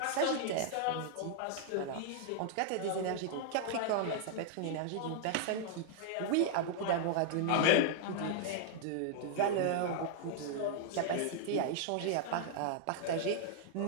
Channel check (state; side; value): different; both; correlation -0.01